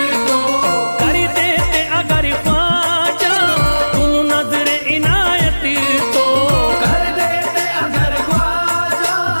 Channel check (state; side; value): inverted; both; correlation -1.00